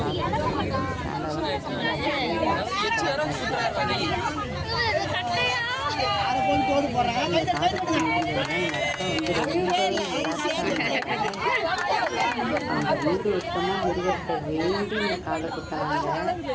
வீடு வருஷமா முருகத்தை வேண்டி காதை குத்தாங்க.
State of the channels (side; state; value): both; identical; correlation 1.00